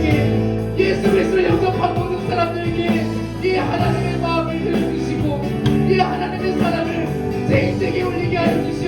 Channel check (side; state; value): both; identical; correlation 1.00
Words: 예수 그리스도를 영접한 모든 사람들에게 이 하나님의 마음을 들려주시고 이 하나님의 사랑을 제 인생에 올리게 하여